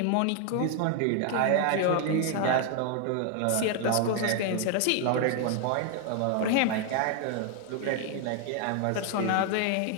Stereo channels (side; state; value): both; different; correlation 0.00